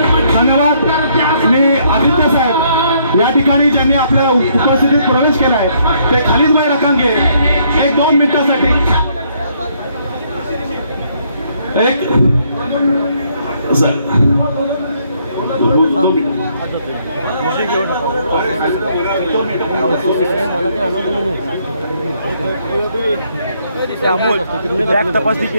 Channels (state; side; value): inverted; both; correlation -0.69